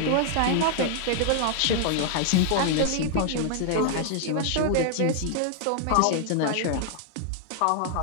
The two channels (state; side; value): different; both; correlation 0.00